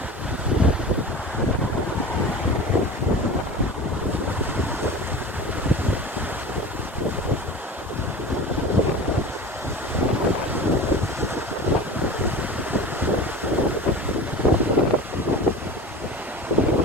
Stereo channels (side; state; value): both; normal; correlation 0.34